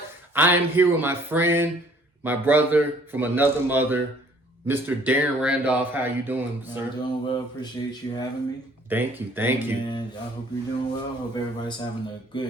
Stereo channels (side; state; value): both; normal; correlation 0.58